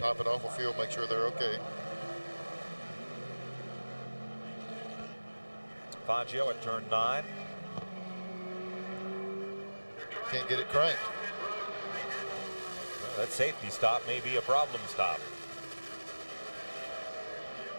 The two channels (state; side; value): inverted; both; correlation -1.00